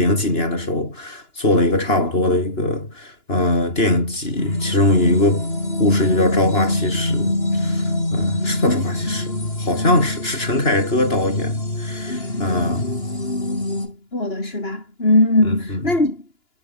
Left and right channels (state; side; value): late; right; 2.9 ms